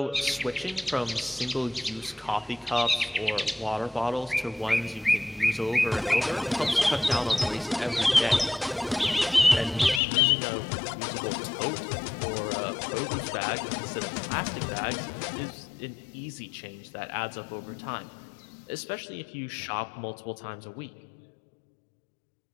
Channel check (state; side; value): drops out; right; at 10.0 s